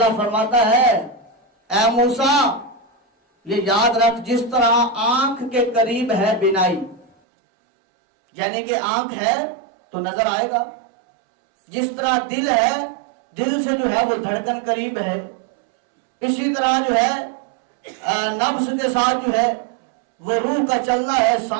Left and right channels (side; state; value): left; drops out; at 7.1 s